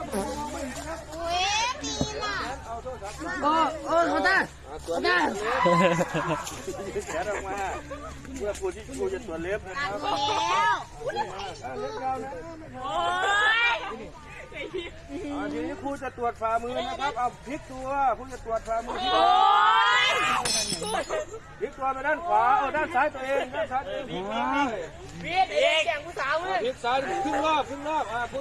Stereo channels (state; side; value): identical; both; correlation 1.00